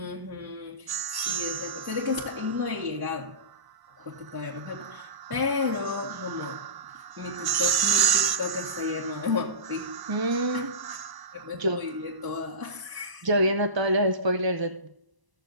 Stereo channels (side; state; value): left; late; 1.0 ms